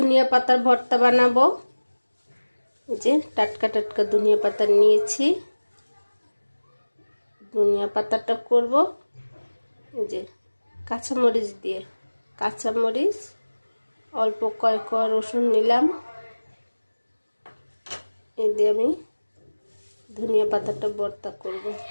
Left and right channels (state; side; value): inverted; both; correlation -1.00